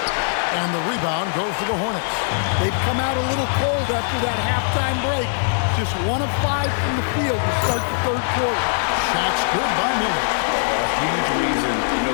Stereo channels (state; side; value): silent; right; digital silence